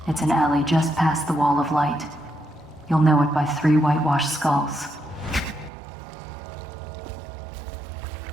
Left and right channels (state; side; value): drops out; left; at 5.7 s